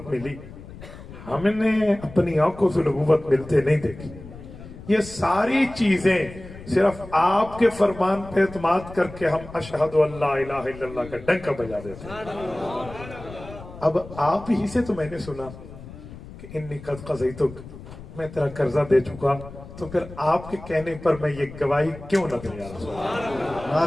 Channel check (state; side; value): noise; left; rumble, 15 dB below the sound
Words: ملی, ہم نے اپنی آنکھوں سے نبوت ملتے نہیں دیکھی. یہ ساری چیزیں صرف آپ کے فرمان پہ اعتماد کر کے ہم اشہد ان لا الہ الا اللہ کا ڈنکا بجا دیتے ہیں. اب آپ ہی سے تو میں نے سنا کہ انی قد قضیتک, میں تیرا قرضہ دے چکا, تو پھر آپ کے کہنے پر میں یہ گواہی کیوں نہ دوں؟ یا رسول اللہ.